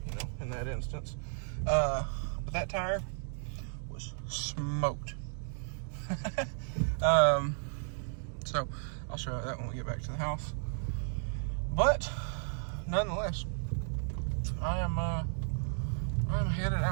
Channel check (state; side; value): silent; left; digital silence